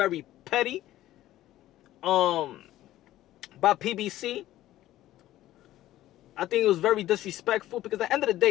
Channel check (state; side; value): quieter; right; 14.5 dB